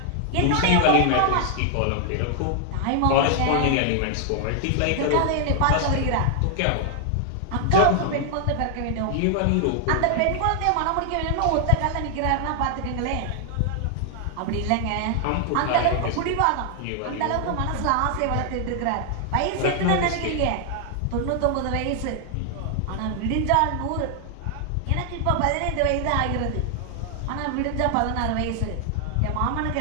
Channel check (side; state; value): both; different; correlation 0.00